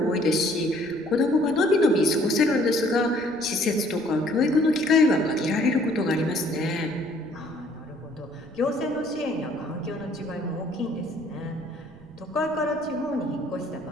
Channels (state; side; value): noise; right; rumble, 23 dB below the sound